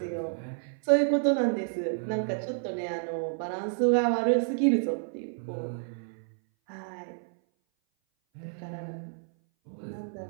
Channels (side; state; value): left; silent; 57 dB below the other